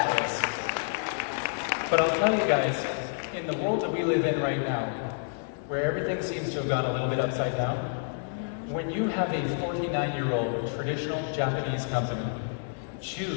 this. But I'll tell you guys, in the world that we live in right now, where everything seems to have gone a little bit upside down, when you have a 49-year-old traditional Japanese company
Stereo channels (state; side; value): silent; right; 59 dB below the other